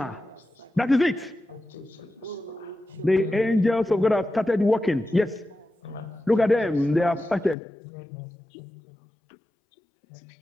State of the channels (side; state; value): right; drops out; at 7.6 s